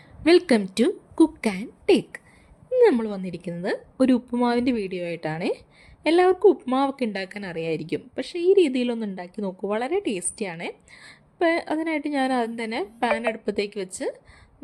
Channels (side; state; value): both; identical; correlation 1.00